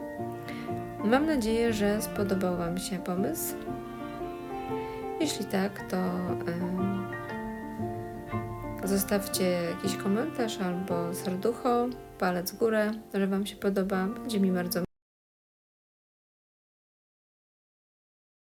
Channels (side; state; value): both; identical; correlation 1.00